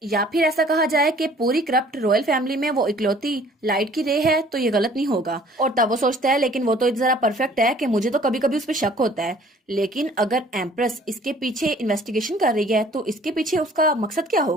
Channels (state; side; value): normal; both; correlation 0.54